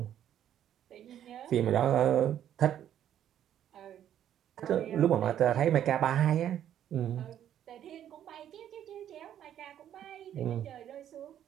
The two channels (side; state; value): left; quieter; 10.6 dB